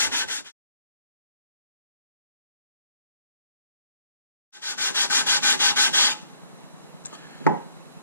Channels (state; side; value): inverted; both; correlation -0.64